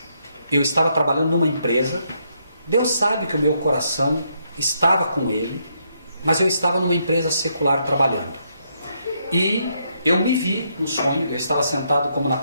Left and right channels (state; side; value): inverted; both; correlation -0.76